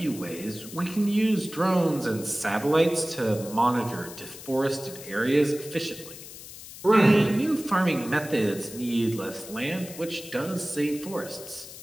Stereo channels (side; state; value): left; noise; hiss, 14 dB below the sound